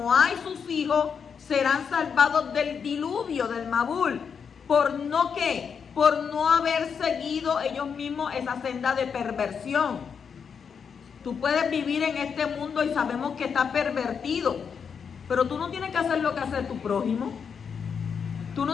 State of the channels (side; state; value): right; quieter; 6.6 dB